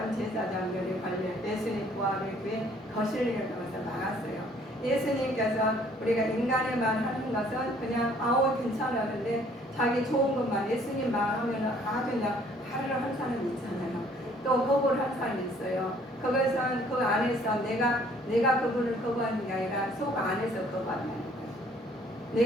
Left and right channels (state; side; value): normal; both; correlation 0.60